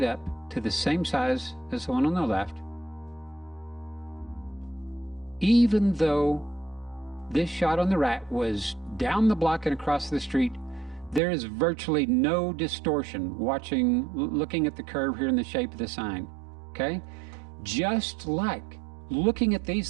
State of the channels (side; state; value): left; drops out; at 11.2 s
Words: up to the same size as the one on the left, even though this shot on the right was down the block and across the street, there is virtually no distortion looking at the curve here in the shape of the sign, okay? Just like looking at